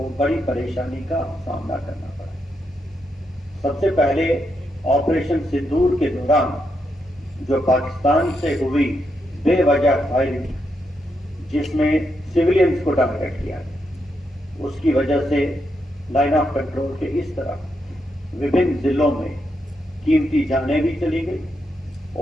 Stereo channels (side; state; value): both; normal; correlation 0.82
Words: बड़ी परेशानी का सामना करना पड़ा। सबसे पहले ऑपरेशन सिंदूर के दौरान जो पाकिस्तान से हुई बेवजह फायरिंग, जिसमें सिविलियंस को टारगेट किया गया, उसकी वजह से लाइन ऑफ कंट्रोल के इस तरफ विभिन्न जिलों में कीमती जानें भी चली गई